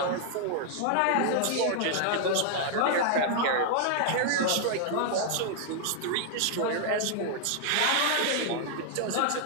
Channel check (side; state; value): both; different; correlation 0.00